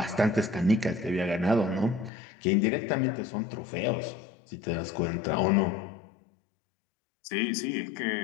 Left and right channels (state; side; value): drops out; right; at 2.1 s